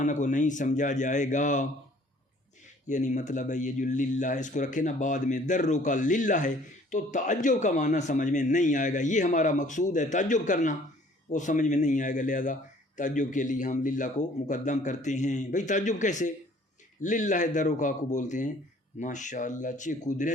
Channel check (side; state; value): both; normal; correlation 0.56